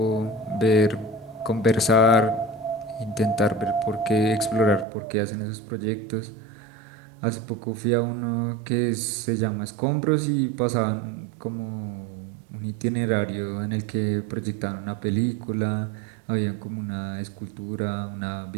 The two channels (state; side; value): drops out; left; at 4.9 s